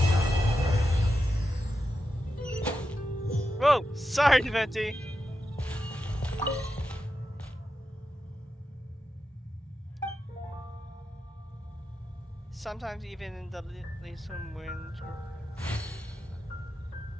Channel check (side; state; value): both; normal; correlation 0.89